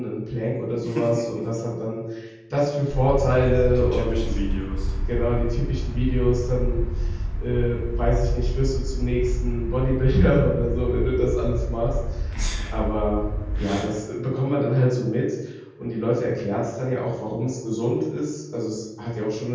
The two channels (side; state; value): both; identical; correlation 1.00